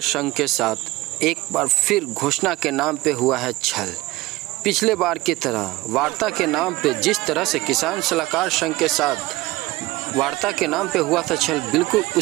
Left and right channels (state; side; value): quieter; left; 19.7 dB